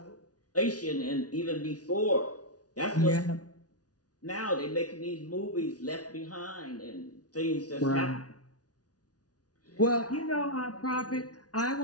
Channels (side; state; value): right; late; 0.68 ms